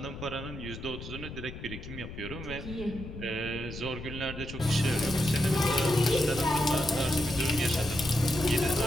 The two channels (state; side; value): noise; left; rumble, 10 dB below the sound